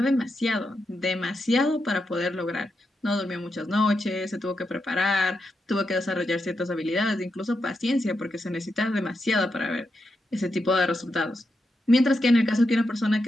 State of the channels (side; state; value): both; normal; correlation 0.85